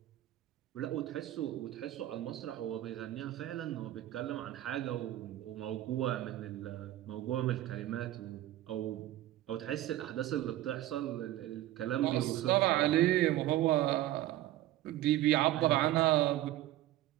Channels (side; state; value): left; quieter; 14.6 dB